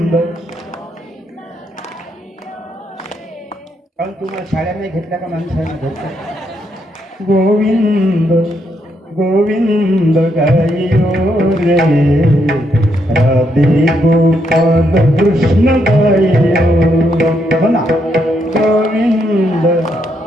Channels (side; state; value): both; normal; correlation 0.77